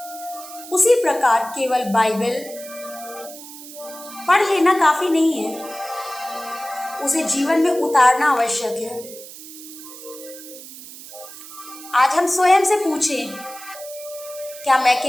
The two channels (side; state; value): right; noise; hiss, 15 dB below the sound